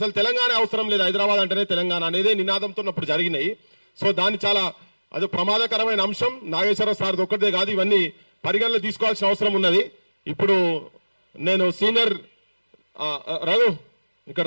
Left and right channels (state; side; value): inverted; both; correlation -1.00